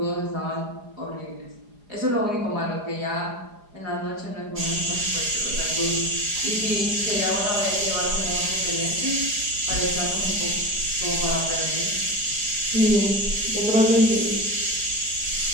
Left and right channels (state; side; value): late; left; 4.9 ms